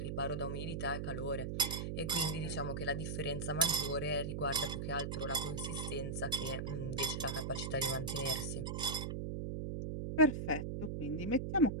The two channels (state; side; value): noise; right; hum, 3 dB below the sound